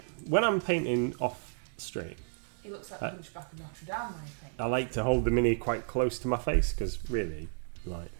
When I'm painting off stream, He looks like the Hunchback of Notre Dame when he paints. I like to hold the mini quite close to my face because really, like,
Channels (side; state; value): left; silent; digital silence